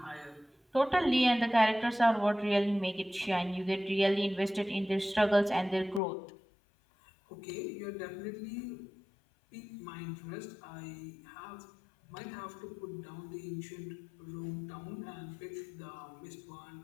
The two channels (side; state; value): right; drops out; at 6.0 s